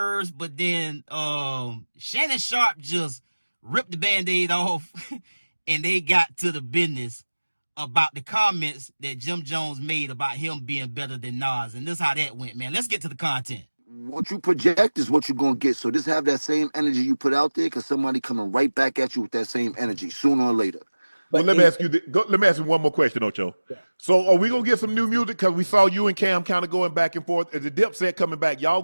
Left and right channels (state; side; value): inverted; both; correlation -1.00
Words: but then Shannon Sharpe just ripped the Band-Aid off and they got to the business about the comments that Jim Jones made about him being better than Nas. And this is how that went, man. Let's get to the content. What you project is what you're gonna get. So just have that same energy you put out there, because somebody coming right back at you with that same energy sooner or later. Well, let me ask you. Let me ask you one more question, Ocho. Yeah. So, are we gonna get some new music? Because we saw you and Cam kind of going back and forth. Is the Dipset coming back? Y'all